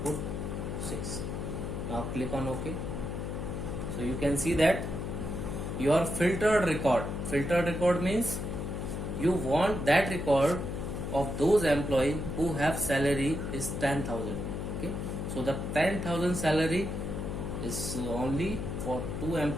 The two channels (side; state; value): left; noise; hum, 4 dB below the sound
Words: 6. Now click on OK. So you can see that your filtered record means you want that record of those employees who have salary is 10,000. Okay, so the 10,000 salary is only for 2